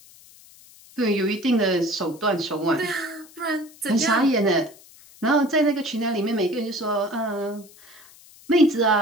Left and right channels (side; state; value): left; noise; hiss, 24 dB below the sound